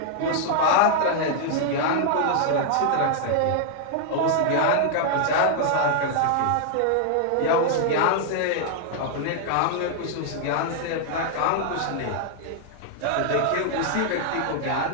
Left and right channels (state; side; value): different; both; correlation -0.01